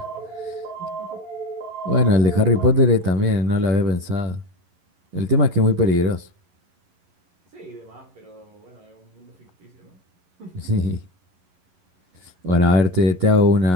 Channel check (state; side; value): late; left; 11 ms